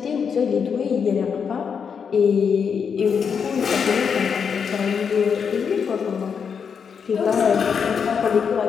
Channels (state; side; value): quieter; right; 6.6 dB